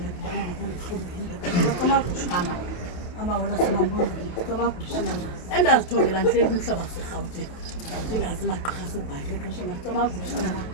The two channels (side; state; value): right; late; 28 ms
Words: adibana nokuhlubini masitamakushana amawela semambondweni masitamakushana endazithongela ndihleli kumhlaba serhawutini ndingazi magqirha sebhayile xesha masitamakushana